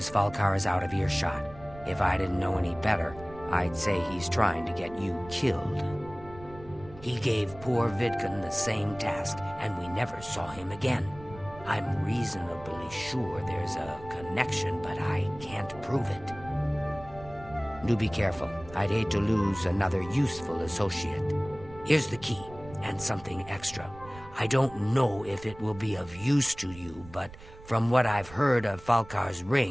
Falcar is out of earshot. If I didn't know any better, I'd say he's trying to get you killed. He gave poor Vidkun the same task, and we never saw him again. I'm reasonably sure there's a connection, but I can't prove it. Do be careful. I'd hate to lose another useful associate. Here's the key, and something extra. I don't know if it will be of use to you, but from what I've heard of Falcar's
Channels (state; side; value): noise; right; rumble, 18 dB below the sound